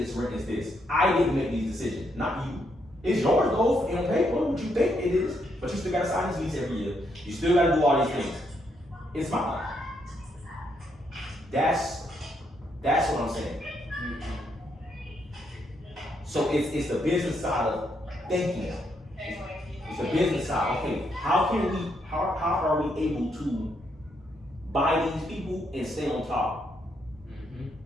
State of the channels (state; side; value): normal; both; correlation 0.76